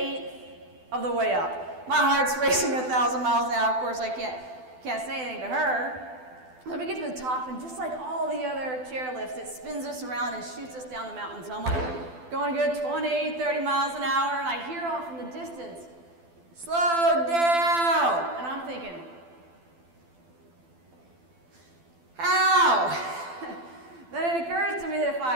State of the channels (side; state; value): left; late; 12 ms